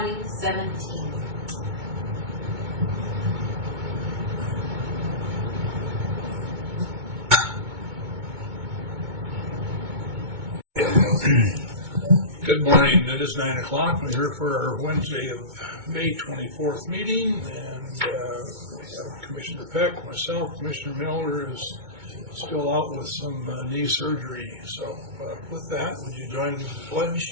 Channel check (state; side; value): late; left; 2.2 ms